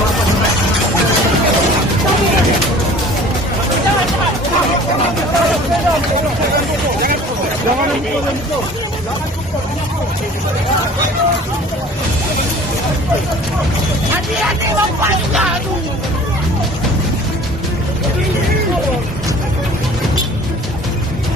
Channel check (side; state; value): both; normal; correlation 0.47